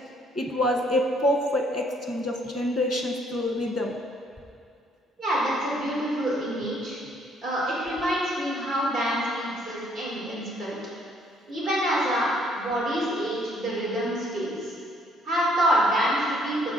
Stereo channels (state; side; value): normal; both; correlation 0.65